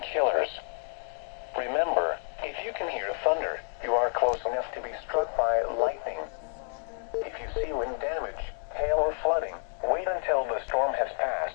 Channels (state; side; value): silent; right; 58 dB below the other